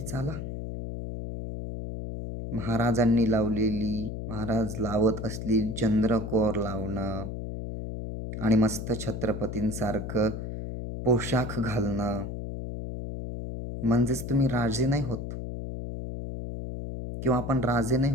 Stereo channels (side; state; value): left; noise; hum, 6 dB below the sound